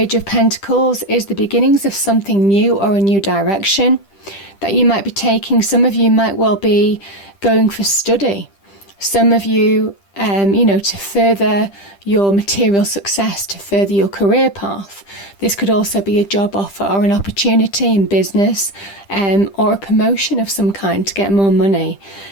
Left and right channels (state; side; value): late; right; 10 ms